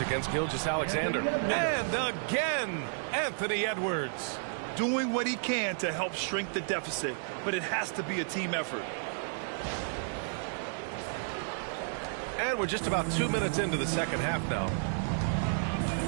against Gilgeous-Alexander. And again, Anthony Edwards. Doing what he can to help shrink the deficit, but it has to be a team effort. And we're just about 2 minutes into the second half now.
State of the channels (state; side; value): silent; left; 57 dB below the other